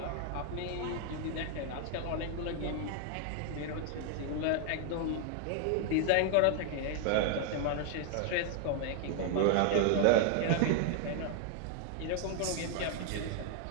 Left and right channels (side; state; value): both; different; correlation 0.00